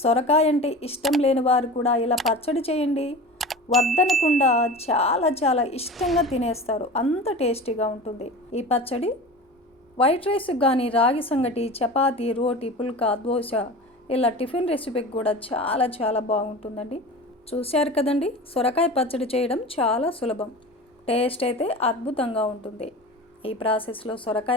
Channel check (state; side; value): normal; both; correlation 0.33